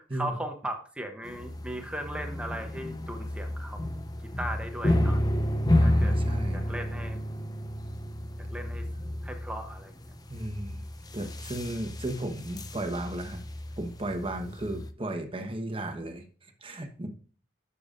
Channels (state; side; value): normal; both; correlation 0.90